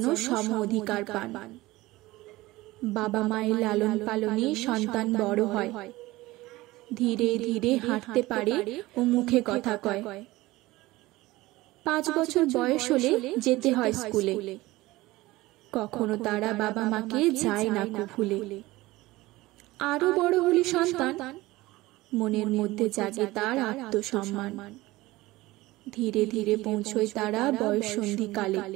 সম অধিকার পান। বাবা মায়ের লালন পালনে সন্তান বড় হয়, ধীরে ধীরে হাঁটতে পারে ও মুখে কথা কয়। 5 বছর বয়স হলে যেতে হয় স্কুলে, কখনো তারা বাবা মাকে যায় না ভুলে। আরো বড় হলে সন্তান, মনের মধ্যে জাগে তার আত্মসম্মান। ধীরে ধীরে পৌঁছয় তারা বয়ঃসন্ধিকালে,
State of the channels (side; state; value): left; quieter; 19.1 dB